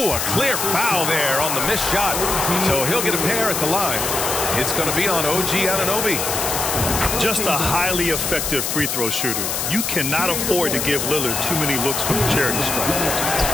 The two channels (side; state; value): left; noise; hiss, 1 dB below the sound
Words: a clear foul there on the missed shot. So he'll get a pair at the line. It's going to be on OG Anunoby. Just a highly effective free throw shooter. You cannot afford to give Lillard too many looks from the charity stripe.